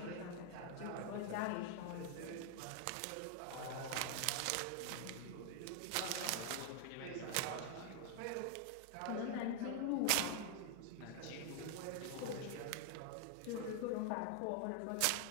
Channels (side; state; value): both; different; correlation 0.00